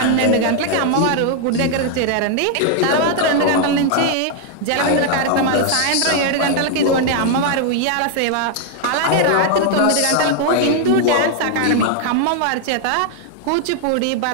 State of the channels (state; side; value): different; both; correlation 0.00